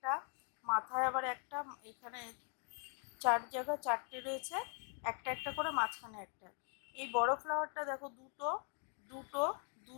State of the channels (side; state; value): right; quieter; 39.2 dB